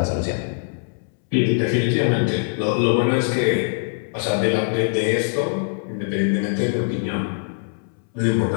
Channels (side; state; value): right; silent; 64 dB below the other